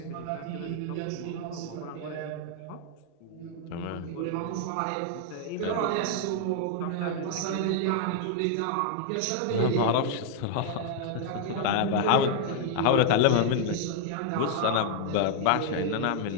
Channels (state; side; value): different; both; correlation -0.01